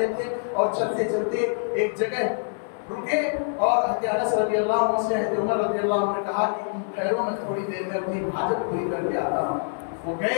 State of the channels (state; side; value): silent; right; digital silence